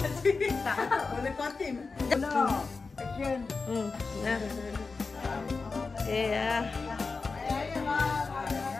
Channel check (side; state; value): right; quieter; 4.3 dB